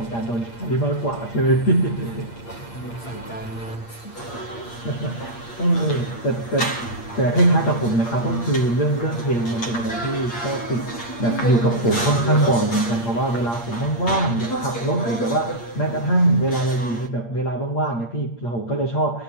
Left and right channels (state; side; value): late; right; 8.6 ms